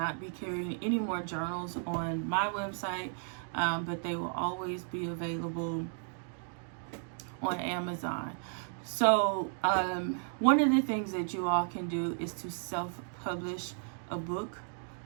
be carrying any more journals on my website, but they will always be available on Amazon. So one of the things that you all can do is to self-publish a book,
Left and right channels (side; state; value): left; silent; 55 dB below the other